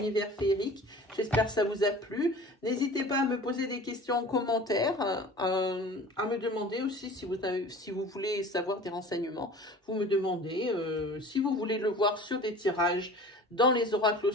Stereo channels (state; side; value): normal; both; correlation 0.42